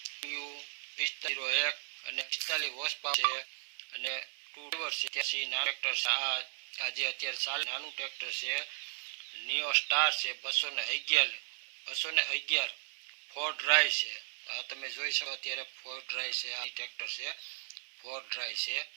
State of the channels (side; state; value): left; silent; digital silence